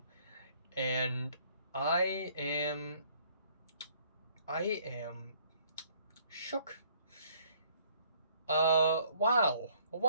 and I am I am shook. Wow.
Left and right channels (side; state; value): both; inverted; correlation -0.63